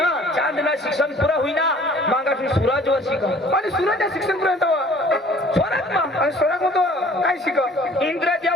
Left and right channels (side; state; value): both; normal; correlation 0.52